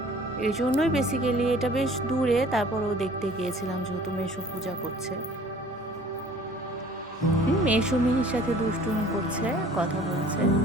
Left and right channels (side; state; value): both; normal; correlation 0.51